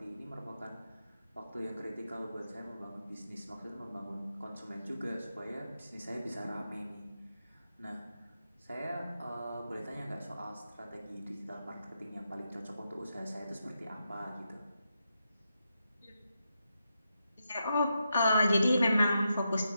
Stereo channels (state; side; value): inverted; both; correlation -0.86